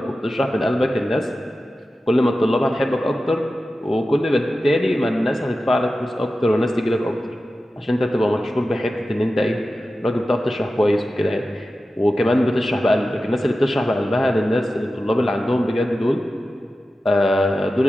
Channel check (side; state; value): both; normal; correlation 0.93